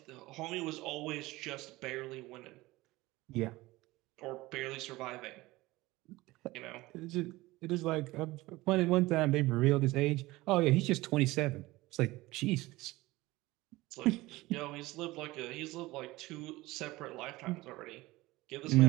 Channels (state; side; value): quieter; left; 19.6 dB